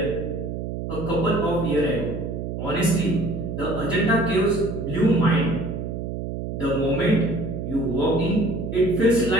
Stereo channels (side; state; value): right; noise; hum, 5 dB below the sound